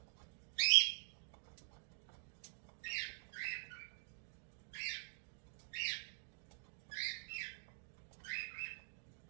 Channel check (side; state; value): left; silent; digital silence